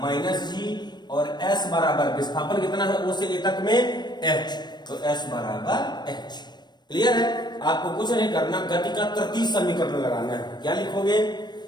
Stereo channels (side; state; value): right; late; 0.21 ms